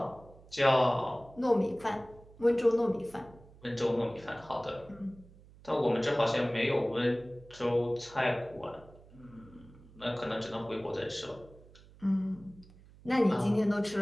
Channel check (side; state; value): right; noise; hum, 23 dB below the sound